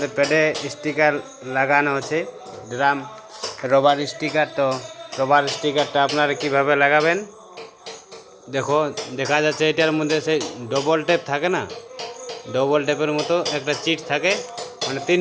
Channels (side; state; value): both; identical; correlation 1.00